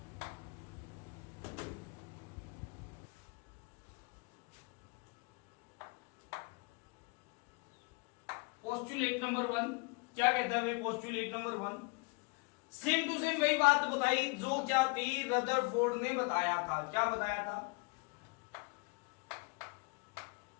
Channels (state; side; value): quieter; right; 30.3 dB